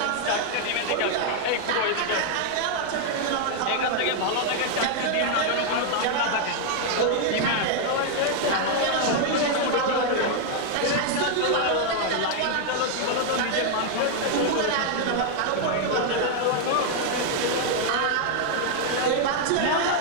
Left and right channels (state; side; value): different; both; correlation 0.00